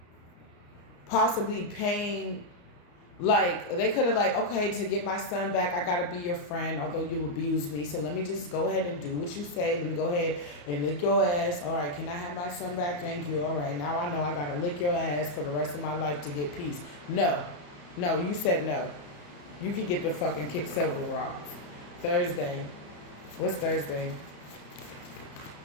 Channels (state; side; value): late; right; 34 ms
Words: possibly paying. Like, they could have like, okay, to get my son back, I got to be your friend, although you abused me. So let me just go ahead and do what you say. Let me go ahead and lick your ass. All right, can I have my son back? Thank you. All right, now I know I got to lick your ass for the rest of my life to get peace. No, you said no. You can get the fucking kick several rocks. Thursday. What's Thursday?